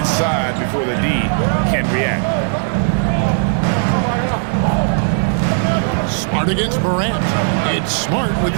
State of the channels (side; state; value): left; silent; 56 dB below the other